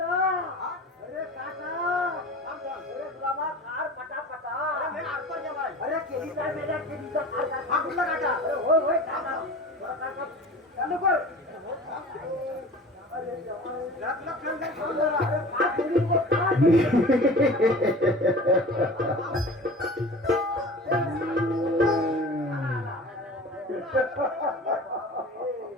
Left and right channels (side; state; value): both; normal; correlation 0.39